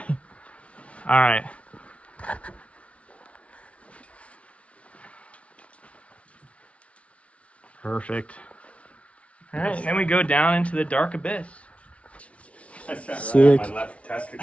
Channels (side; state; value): right; late; 0.063 ms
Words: All right. Perfect. All right, and then we go down into the dark abyss. That's right Sick. on my left